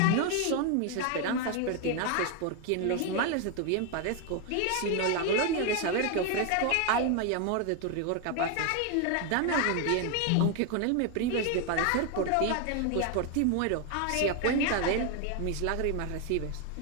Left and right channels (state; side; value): different; both; correlation 0.01